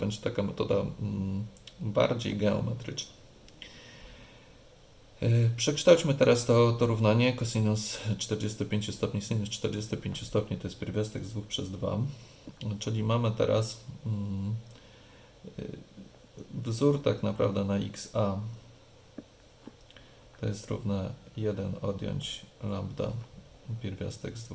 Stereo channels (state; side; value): identical; both; correlation 1.00